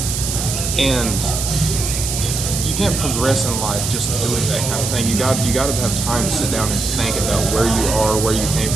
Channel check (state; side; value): noise; right; hiss, 3 dB below the sound